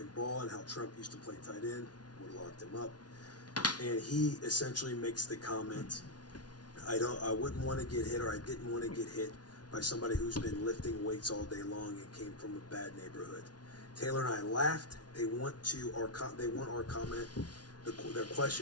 ball and how Trump used to play tight end, would have locked him up, and he essentially makes the comment, I wouldn't want to get hit, or I didn't want to get hit by somebody who's been lifting weights all day long and came from a bad neighborhood. Taylor and I laughed. They want our comment. Their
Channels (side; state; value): right; late; 0.69 ms